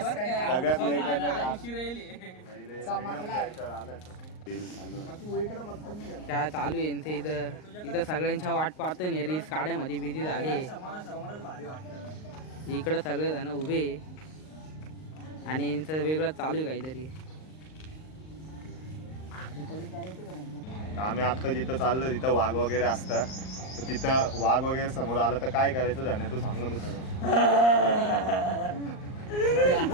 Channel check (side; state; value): right; late; 38 ms